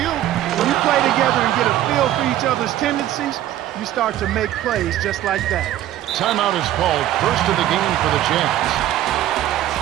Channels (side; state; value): left; quieter; 13.0 dB